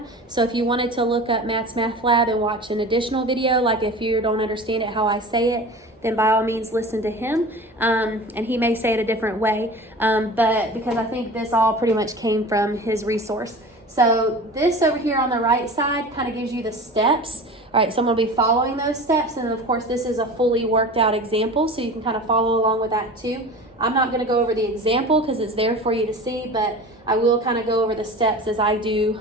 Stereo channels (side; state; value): both; normal; correlation 0.36